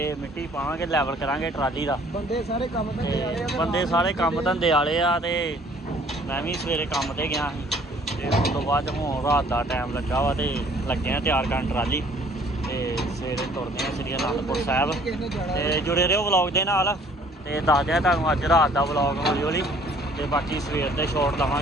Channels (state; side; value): normal; both; correlation 0.57